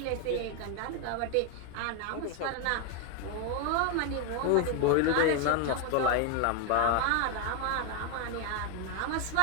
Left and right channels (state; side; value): different; both; correlation 0.01